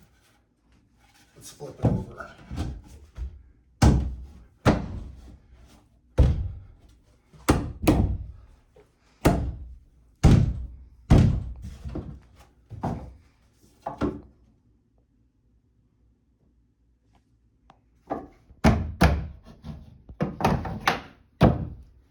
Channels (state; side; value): identical; both; correlation 1.00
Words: Let's flip it over.